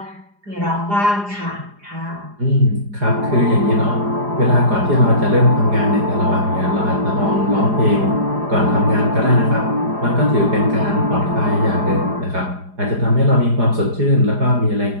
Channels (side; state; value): left; late; 4.9 ms